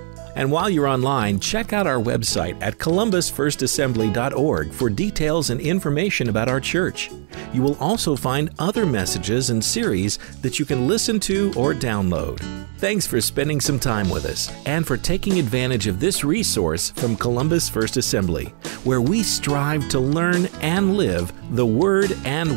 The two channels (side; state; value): left; silent; digital silence